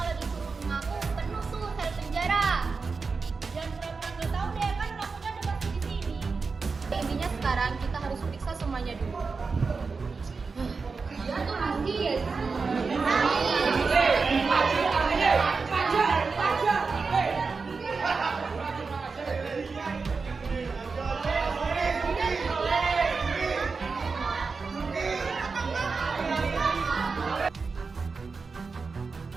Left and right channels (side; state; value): left; quieter; 4.6 dB